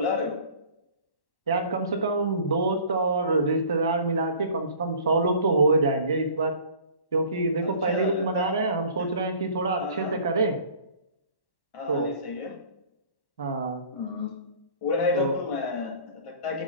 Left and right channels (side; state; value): right; late; 1.1 ms